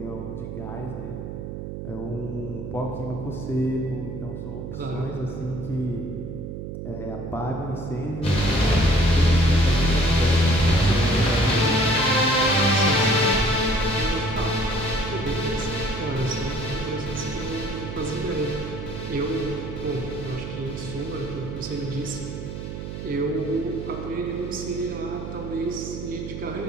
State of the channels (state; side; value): noise; right; hum, 7 dB below the sound